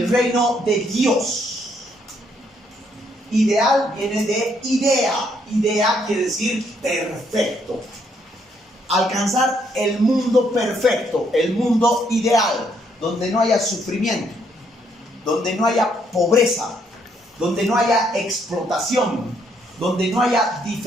reino de Dios. Ideal viene de idea. Idea quiere decir perfecto. Alcanzar el mundo perfecto, el mundo ideal, donde no haya sufrimiento, donde no haya pobreza, donde no haya explotación, donde no haya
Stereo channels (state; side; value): normal; both; correlation 0.71